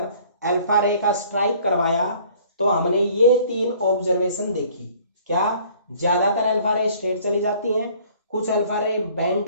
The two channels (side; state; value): both; inverted; correlation -0.55